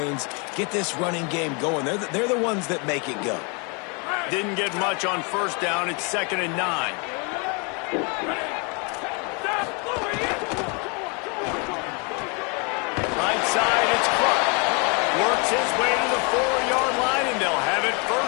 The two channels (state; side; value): quieter; right; 33.2 dB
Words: get this running game going. They're the ones that make it go. Didn't get much on 1st down. It's 2nd and 9. Right side, it's Clark. Works his way to the 4-yard line, and they'll have it